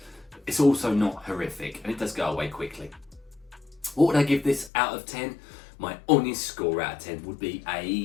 It's also not horrific, and it does go away quickly. What would I give this out of 10? My honest score out of 10 would be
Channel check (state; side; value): drops out; right; at 4.7 s